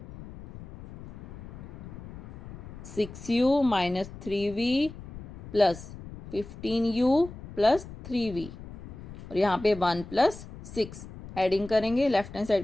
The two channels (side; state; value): left; noise; rumble, 14 dB below the sound